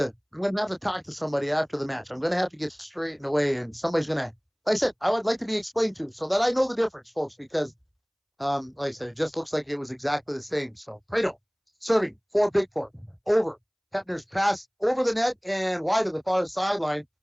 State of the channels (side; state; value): both; identical; correlation 1.00